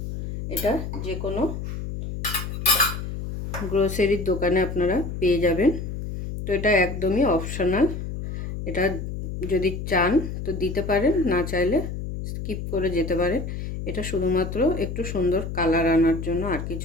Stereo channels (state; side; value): noise; left; hum, 6 dB below the sound